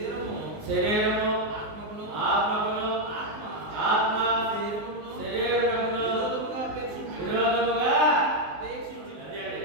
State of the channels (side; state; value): left; late; 19 ms